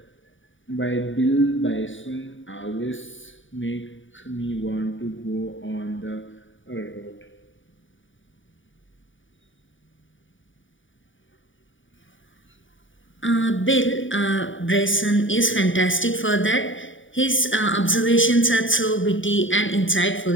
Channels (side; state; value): right; late; 0.56 ms